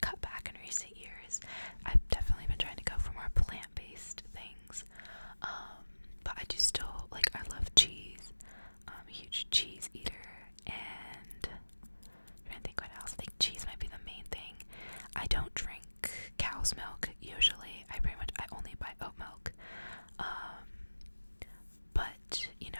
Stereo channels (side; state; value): both; inverted; correlation -1.00